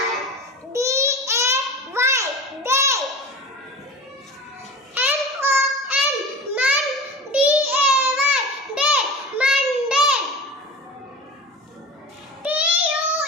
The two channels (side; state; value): both; normal; correlation 0.33